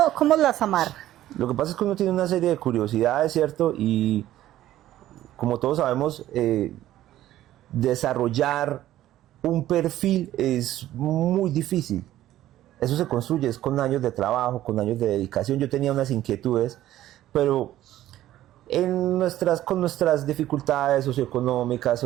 las amarra? Lo que pasa es que uno tiene una serie de curiosidades, ¿cierto? Y como todos sabemos, desarrollar un perfil es muy difícil. Eso se construye es con años de trabajo, con años de dedicación. Yo tenía unas inquietudes, pero con nuestras dificultades socioeconómicas,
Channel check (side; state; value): left; quieter; 13.7 dB